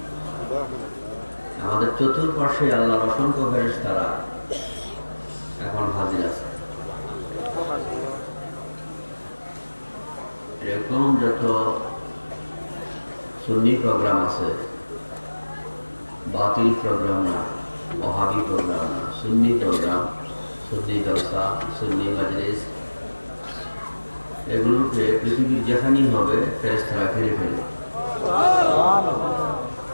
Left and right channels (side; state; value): both; inverted; correlation -1.00